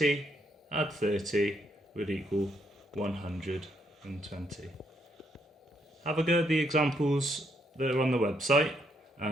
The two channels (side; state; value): both; normal; correlation 0.74